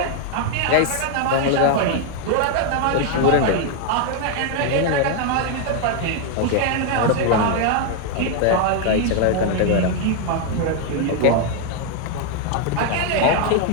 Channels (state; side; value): different; both; correlation 0.00